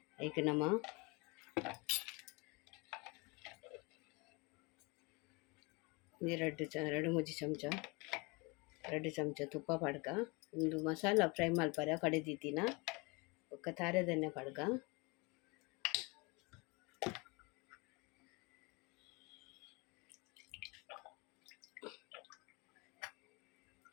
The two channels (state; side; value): quieter; right; 28.0 dB